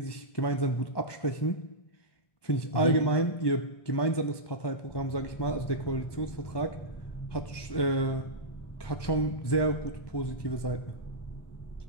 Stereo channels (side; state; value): right; late; 1.2 ms